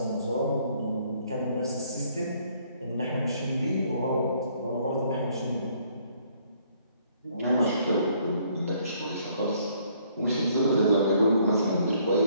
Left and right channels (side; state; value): both; inverted; correlation -0.65